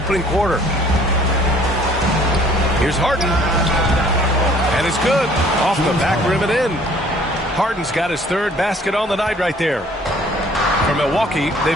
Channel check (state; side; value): normal; both; correlation 0.56